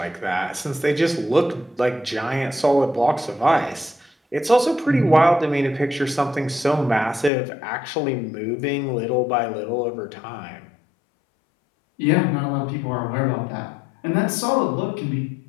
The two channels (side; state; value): right; drops out; at 7.3 s